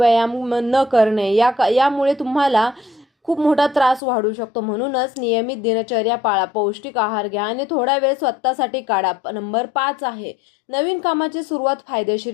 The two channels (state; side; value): drops out; right; at 4.0 s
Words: न करणे यामुळे तुम्हाला खूप मोठा त्रास वाढू शकतो. म्हणूनच नियमित दिनचर्या पाळा, पौष्टिक आहार घ्या आणि थोडा वेळ स्वतःसाठी काढा. नंबर 5 आहे नवीन कामाची सुरुवात